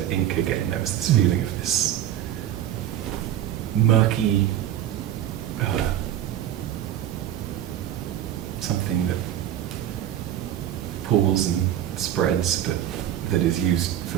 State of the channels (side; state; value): left; quieter; 11.5 dB